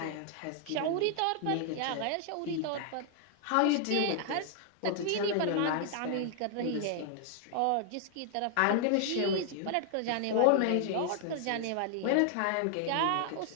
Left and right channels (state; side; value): different; both; correlation 0.00